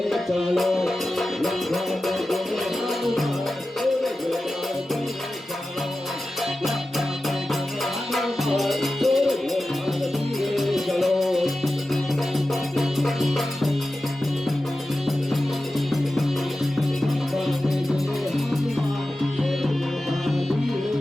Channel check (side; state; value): both; normal; correlation 0.94